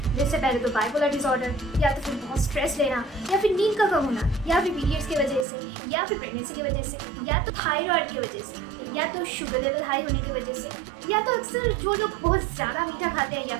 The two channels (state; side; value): drops out; left; at 5.5 s